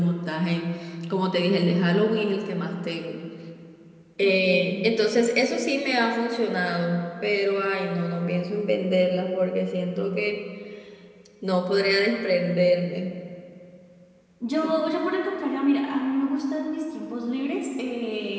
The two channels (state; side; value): identical; both; correlation 1.00